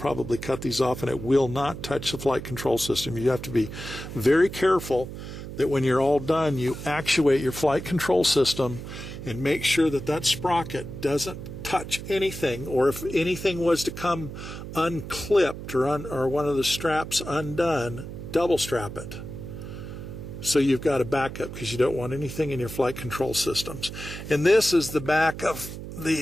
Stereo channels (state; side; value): noise; right; hum, 10 dB below the sound